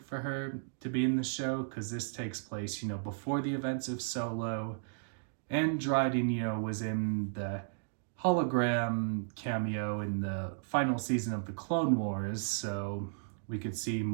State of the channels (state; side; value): silent; left; digital silence